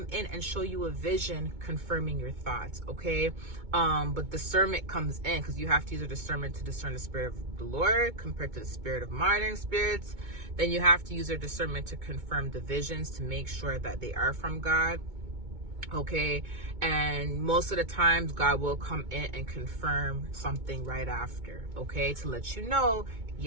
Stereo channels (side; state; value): left; late; 2.2 ms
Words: in and show you a vision confirming your thoughts, okay? But discernment comes in, because you have to use a discernment to discern the spirit of the Lord compared to the spirit of modern spirits. Then you have to use your discernment to confirm the visions to make sure that they are from God, okay? And most of the times God will come in and confirm something right after, okay, to let you know